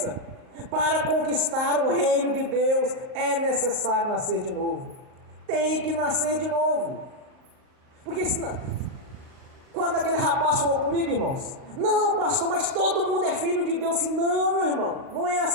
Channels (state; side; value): late; left; 38 ms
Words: Para conquistar o reino de Deus é necessário nascer de novo. Tem que nascer de novo. Porque senão, quando aquele rapaz falou comigo, irmãos: não, pastor, mas todo mundo é filho de Deus. Assim, não, meu irmão, não é